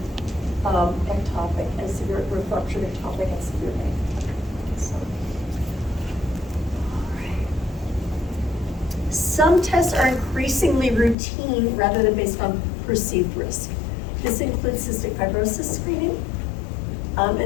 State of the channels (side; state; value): right; drops out; at 11.2 s